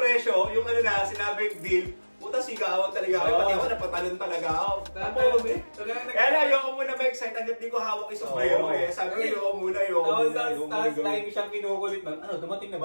yung sinabing deal, puta sigawan talaga ako. Pati ako napatalon talaga ako. Kaya na, ayoko muna ma-excite hanggat di ko hawak yung sombrero eh. Sabi ko, ayoko muna. Tapos time siyang kinukulit na, dumating na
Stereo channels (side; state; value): both; inverted; correlation -1.00